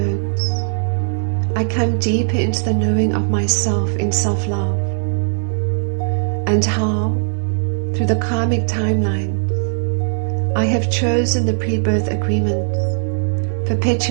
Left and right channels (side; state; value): left; silent; digital silence